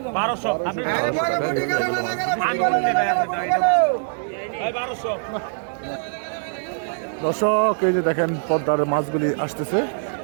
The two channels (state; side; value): silent; left; digital silence